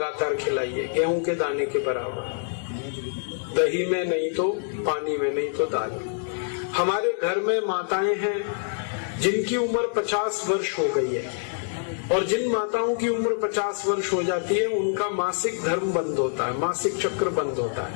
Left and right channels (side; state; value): right; silent; digital silence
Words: खिलाइए, गेहूं के दाने के बराबर, दही में नहीं तो पानी में, नहीं तो दाल में। हमारे घर में माताएं हैं जिनकी उम्र 50 वर्ष हो गई है, और जिन माताओं की उम्र 50 वर्ष हो जाती है उनका मासिक धर्म बंद होता है, मासिक चक्र बंद होता